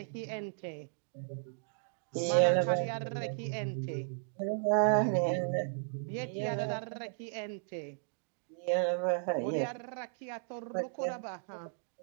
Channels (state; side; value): silent; left; digital silence